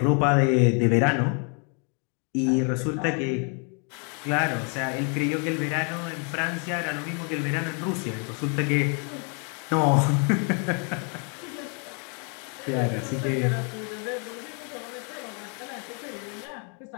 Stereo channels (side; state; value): right; quieter; 38.7 dB